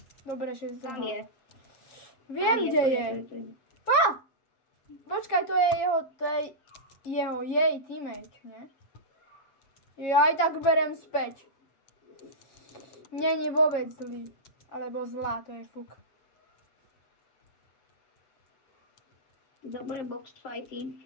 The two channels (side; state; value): right; late; 7.4 ms